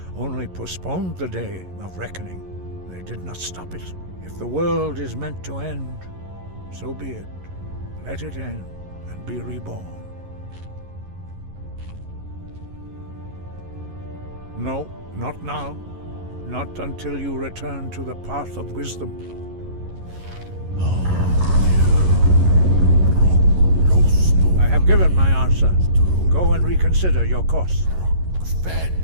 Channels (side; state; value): left; late; 11 ms